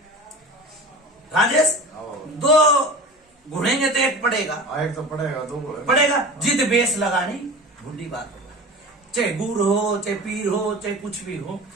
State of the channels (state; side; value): normal; both; correlation 0.35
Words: राजेश, 2 घुड़ेंगे तो एक पड़ेगा, एक तो पड़ेगा, 2 पड़ेगा। जिद बेस लगानी बुढ़ी बात होगा, चाहे गुर हो, चाहे पीर हो, चाहे कुछ भी हो।